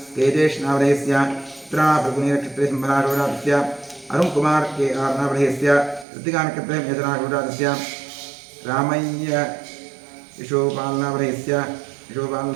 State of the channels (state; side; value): drops out; left; at 6.1 s